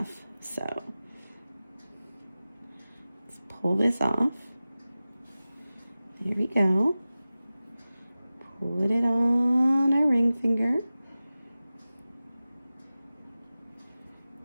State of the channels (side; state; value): both; inverted; correlation -0.96